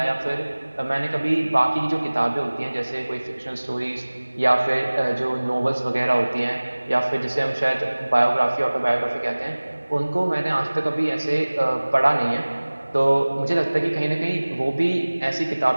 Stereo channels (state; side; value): inverted; both; correlation -1.00